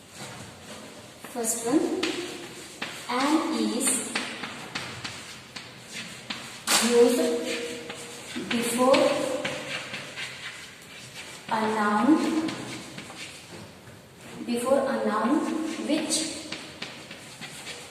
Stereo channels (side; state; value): both; identical; correlation 1.00